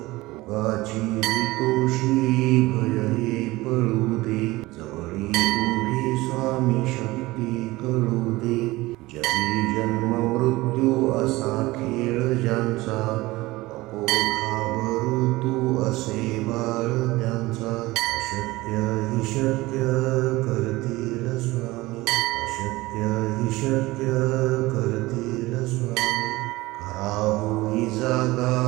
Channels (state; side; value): quieter; left; 19.9 dB